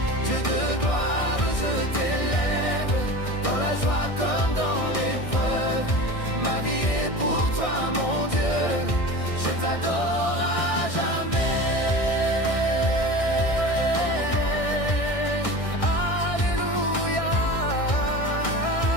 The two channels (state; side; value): late; right; 1.6 ms